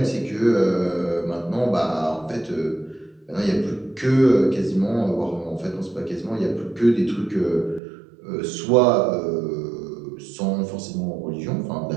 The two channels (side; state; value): left; drops out; at 7.8 s